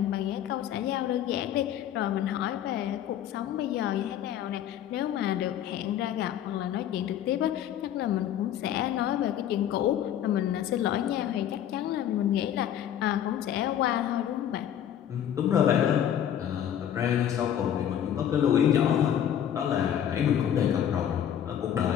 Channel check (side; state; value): right; quieter; 10.2 dB